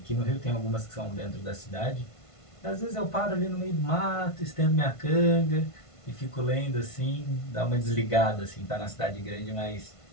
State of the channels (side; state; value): right; late; 1.5 ms